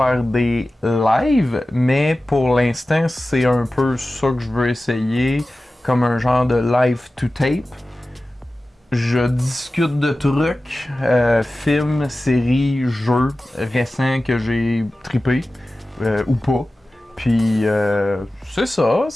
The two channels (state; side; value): normal; both; correlation 0.95